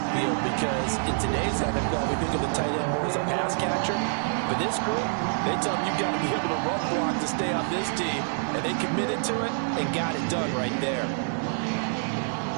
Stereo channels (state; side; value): silent; left; 60 dB below the other